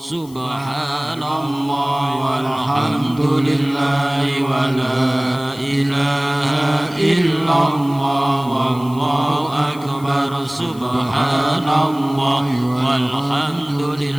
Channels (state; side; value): noise; left; hiss, 22 dB below the sound